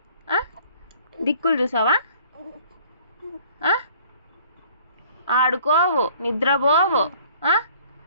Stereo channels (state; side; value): inverted; both; correlation -0.55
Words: దిక్కులు చూసావా? ఆడుకోవు, నిద్రపోవు,